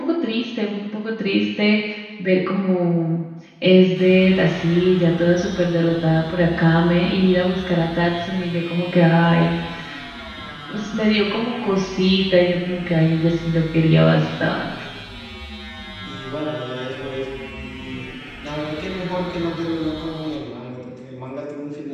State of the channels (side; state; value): both; identical; correlation 1.00